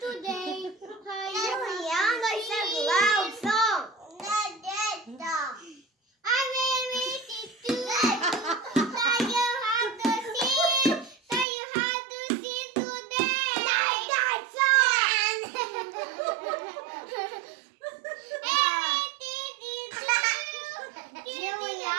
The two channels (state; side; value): drops out; left; at 11.5 s